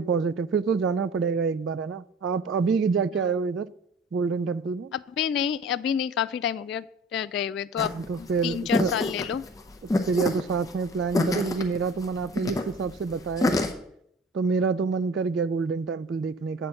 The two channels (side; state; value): both; normal; correlation 0.44